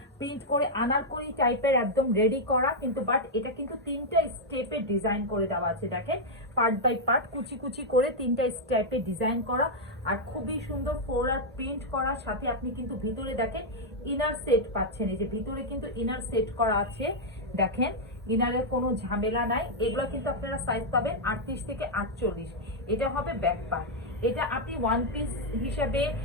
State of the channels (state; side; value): normal; both; correlation -0.03